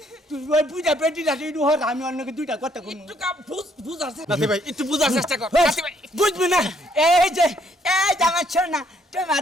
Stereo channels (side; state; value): both; normal; correlation 0.68